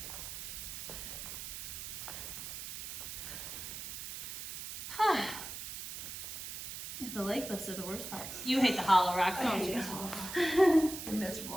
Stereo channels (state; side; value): noise; right; hiss, 8 dB below the sound